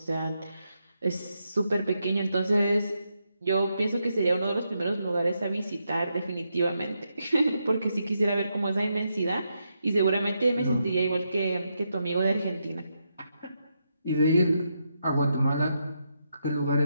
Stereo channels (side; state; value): both; inverted; correlation -0.82